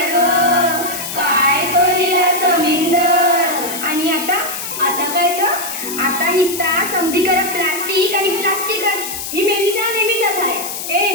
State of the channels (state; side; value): noise; left; hiss, 6 dB below the sound